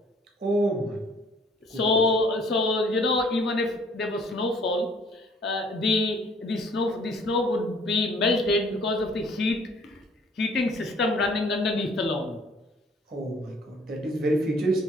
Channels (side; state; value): both; normal; correlation 0.58